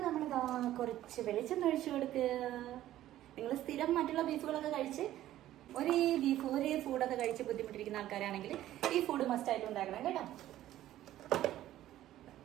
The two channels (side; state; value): left; quieter; 13.6 dB